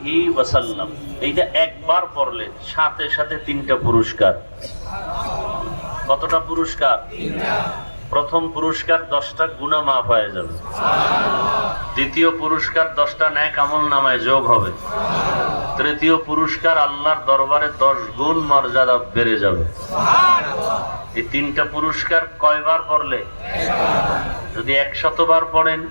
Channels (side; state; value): both; inverted; correlation -1.00